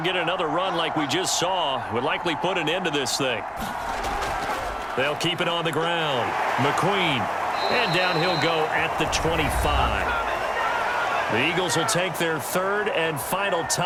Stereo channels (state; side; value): identical; both; correlation 1.00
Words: get another run like we just saw, would likely put an end to this thing. They'll keep it on the ground. McQueen. And down he'll go at the 25. The Eagles will take their 3rd and final